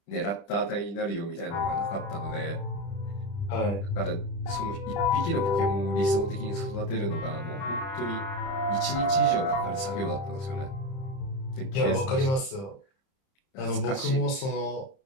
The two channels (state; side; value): late; right; 30 ms